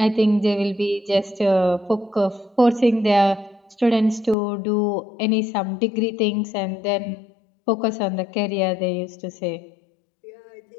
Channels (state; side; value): drops out; right; at 4.4 s